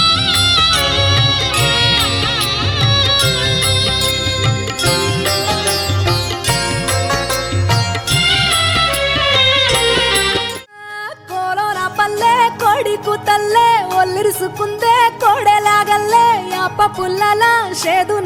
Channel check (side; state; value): both; identical; correlation 1.00